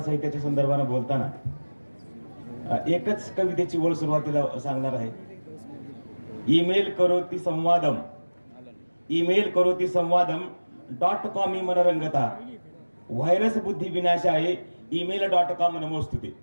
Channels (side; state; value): both; inverted; correlation -1.00